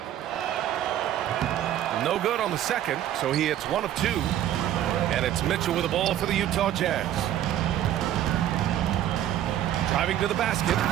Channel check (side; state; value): left; quieter; 11.8 dB